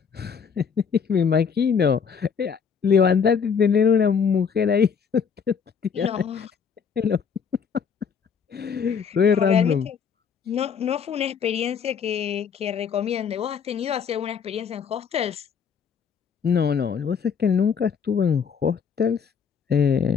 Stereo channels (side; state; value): right; quieter; 6.6 dB